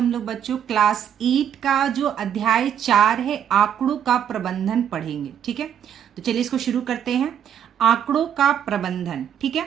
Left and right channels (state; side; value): quieter; left; 9.1 dB